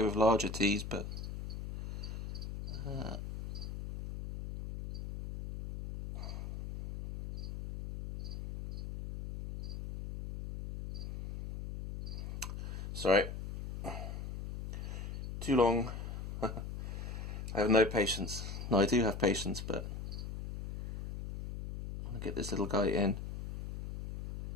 with larger teas, but sorry, too long. I have no patience. No, I do have patience, but I'm going to get this little guy in.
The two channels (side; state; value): left; noise; hum, 7 dB below the sound